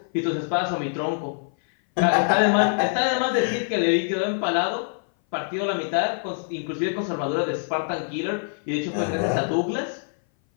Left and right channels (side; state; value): right; silent; 58 dB below the other